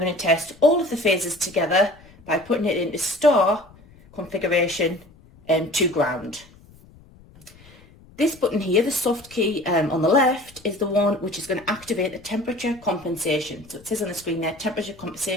to test all of the phases together by putting it into star configuration to ground. This button here, the soft key on the left, is the one which is going to activate the temperature compensation. So it says on the screen there, temperature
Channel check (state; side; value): noise; left; rumble, 25 dB below the sound